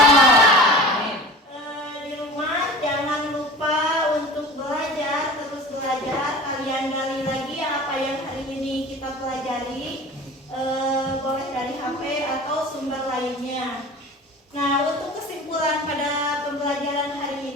rumah jangan lupa untuk belajar, terus belajar. Kalian gali lagi apa yang hari ini kita pelajari, boleh dari HP atau sumber lainnya. Nah, untuk kesimpulan pada pembelajaran hari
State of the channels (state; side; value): normal; both; correlation 0.37